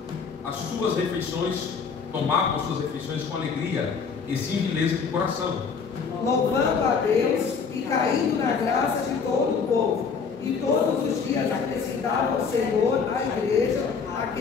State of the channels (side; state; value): right; quieter; 5.7 dB